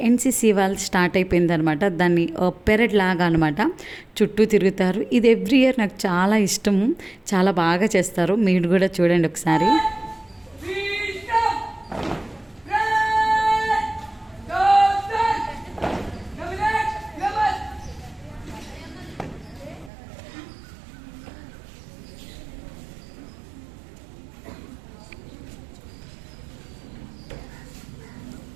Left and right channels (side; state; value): left; drops out; at 19.9 s